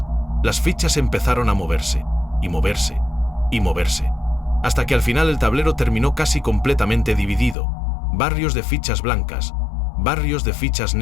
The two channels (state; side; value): drops out; right; at 7.6 s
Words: Las fichas empezaron a moverse, y moverse, y moverse, hasta que al final el tablero terminó casi completamente dividido. Barrios de fichas blancas, barrios de fichas